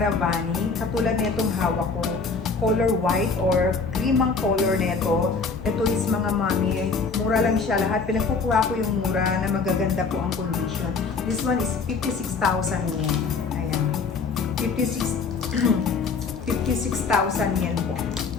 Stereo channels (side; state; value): right; quieter; 4.7 dB